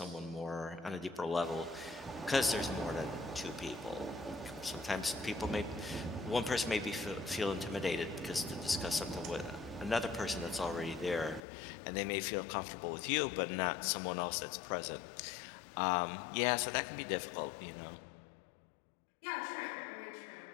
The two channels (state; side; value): drops out; right; at 11.4 s